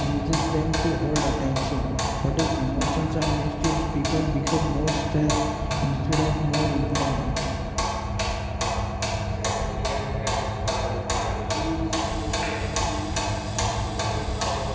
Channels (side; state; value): both; identical; correlation 1.00